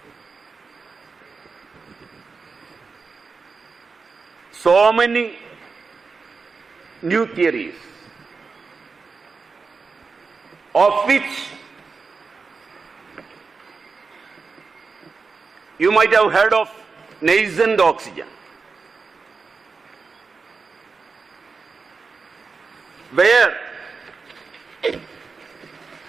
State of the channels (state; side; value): quieter; left; 4.7 dB